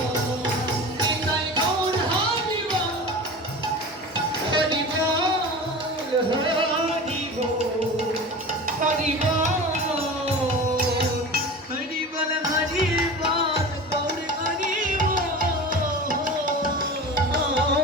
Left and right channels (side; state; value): both; normal; correlation 0.33